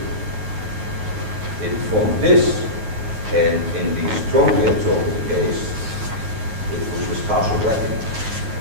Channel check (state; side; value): late; left; 9.3 ms